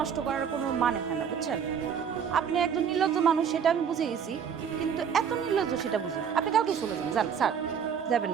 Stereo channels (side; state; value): left; quieter; 7.4 dB